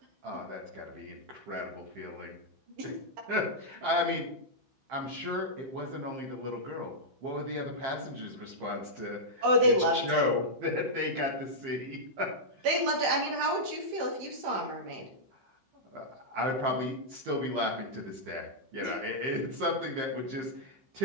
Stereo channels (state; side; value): late; left; 15 ms